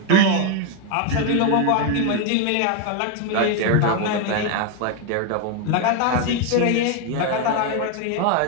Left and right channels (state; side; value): different; both; correlation 0.01